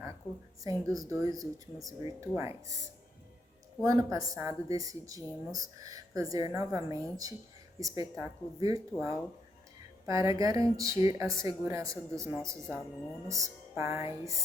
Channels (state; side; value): normal; both; correlation 0.78